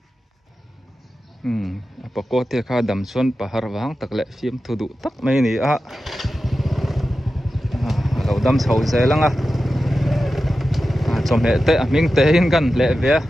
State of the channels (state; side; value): normal; both; correlation 0.93